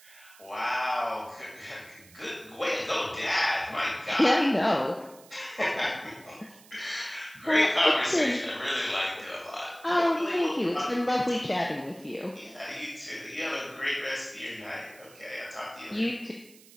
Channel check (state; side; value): noise; right; hiss, 23 dB below the sound